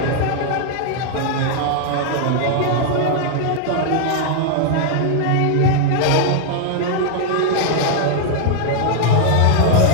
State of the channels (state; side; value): different; both; correlation 0.00